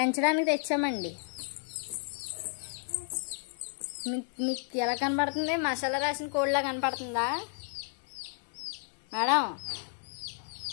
తెచ్చామండి. మీకు ఎలా కనపడుతుంది? మసాలా రాసిన కోడిలా కనపడుతుందా మేడం?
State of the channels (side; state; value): right; silent; 56 dB below the other